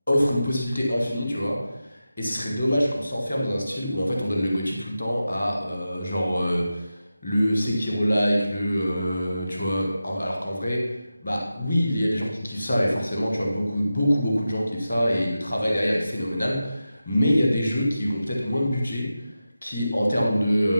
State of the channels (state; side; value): inverted; both; correlation -0.92